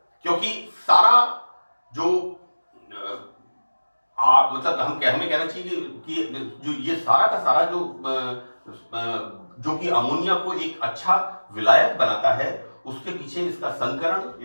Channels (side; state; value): both; inverted; correlation -1.00